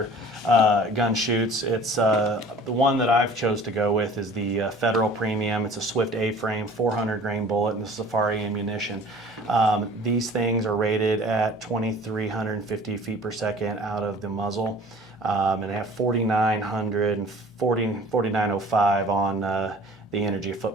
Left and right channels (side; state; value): both; normal; correlation 0.47